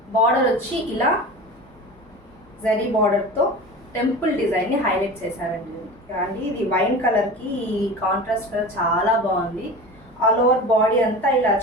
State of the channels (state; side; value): normal; both; correlation 0.33